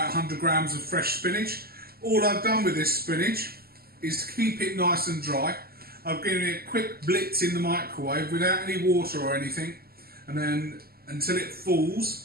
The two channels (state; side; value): late; left; 0.45 ms